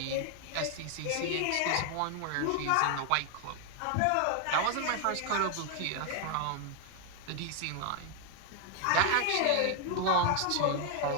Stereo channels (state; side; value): different; both; correlation 0.00